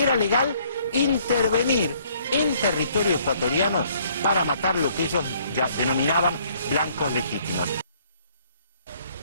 era legal intervenir en territorio ecuatoriano para matar lo que ellos ya denominaban blancos legítimos.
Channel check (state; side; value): inverted; both; correlation -0.63